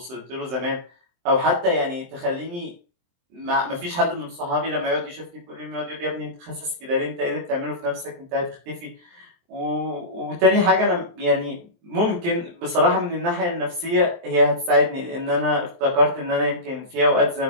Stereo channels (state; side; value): late; left; 23 ms